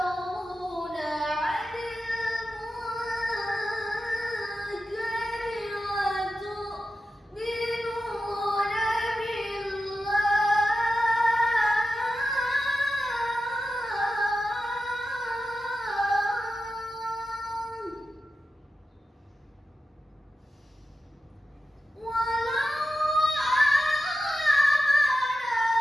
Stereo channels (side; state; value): both; normal; correlation 0.92